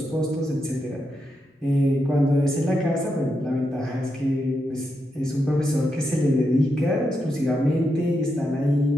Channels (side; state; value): both; normal; correlation 0.84